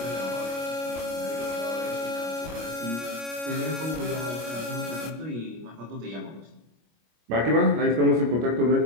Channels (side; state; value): left; late; 25 ms